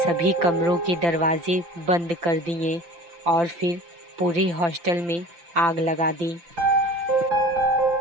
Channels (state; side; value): late; left; 5.8 ms